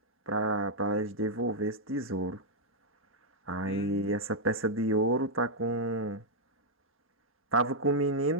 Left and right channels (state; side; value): normal; both; correlation -0.05